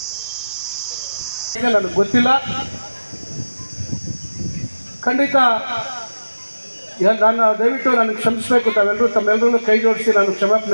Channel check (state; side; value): inverted; both; correlation -0.99